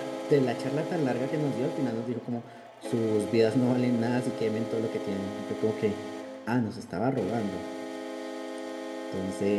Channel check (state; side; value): identical; both; correlation 1.00